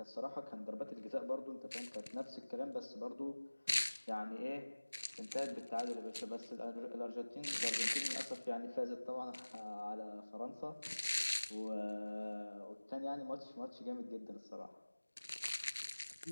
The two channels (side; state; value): both; inverted; correlation -1.00